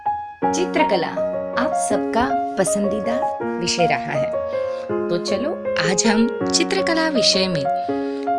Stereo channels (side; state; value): both; identical; correlation 1.00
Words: चित्रकला आप सबका पसंदीदा विषय रहा है। तो चलो आज हम चित्रकला विषय में